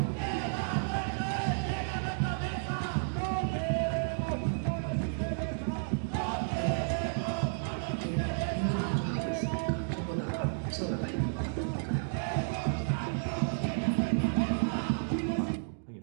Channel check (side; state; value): left; silent; digital silence